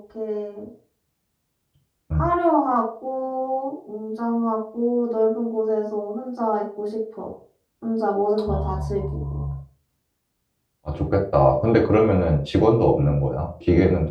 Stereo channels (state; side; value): identical; both; correlation 1.00